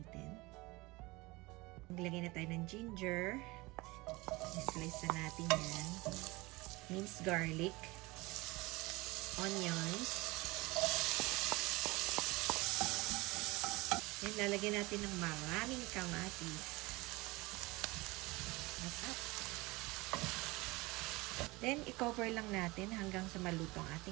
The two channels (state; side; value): quieter; left; 22.9 dB